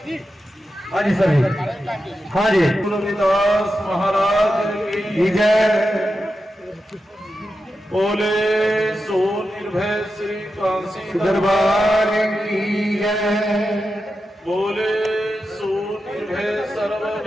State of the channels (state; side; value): normal; both; correlation 0.90